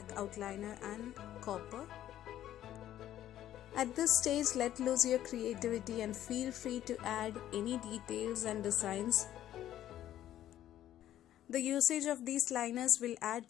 outliner and copper. At this stage, let loose your creativity and feel free to add any details and designs. The usage of these liners will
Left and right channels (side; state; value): right; quieter; 12.3 dB